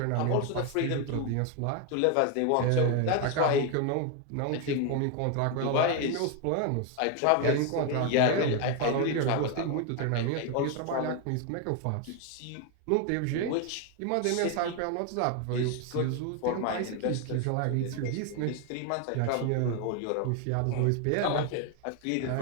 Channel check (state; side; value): different; both; correlation 0.01